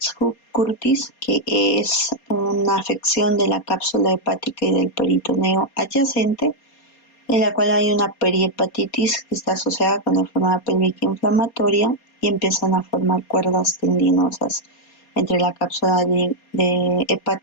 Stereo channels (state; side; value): late; right; 4.2 ms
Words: que es una afección de la cápsula hepática y del peritoneo adyacente, en la cual hay una perihepatitis que está asociada con la enfermedad pélvica inflamatoria y empiezan a formar cuerdas tendinosas entre la cápsula